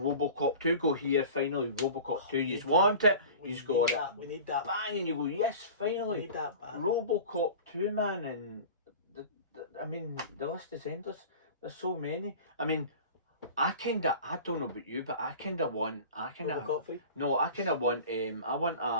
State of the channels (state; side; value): inverted; both; correlation -0.39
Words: 2, go here, finally, Robocop 2, you want it, you just got it. We need that. Bang, and you go, yes, We finally. need that back. Robocop 2, man, and the list is endless. There's so many. I don't know about you, but Robocop 3. no, I kind of want I